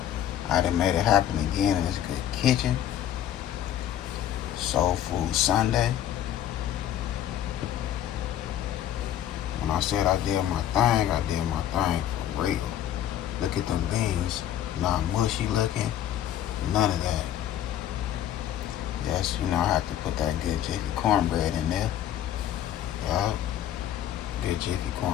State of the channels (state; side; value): quieter; right; 11.3 dB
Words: I done made it happen again in this good kitchen. Soul Food Sunday. When I said I did my thing, I did my thing for real. Look at them beans. Not mushy looking. None of that. Yes, you know I have to put that good Jiffy cornbread in there. Yup. Good Jiffy